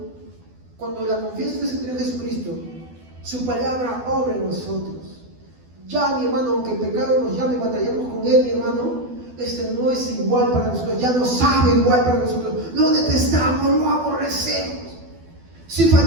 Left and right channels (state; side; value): late; left; 12 ms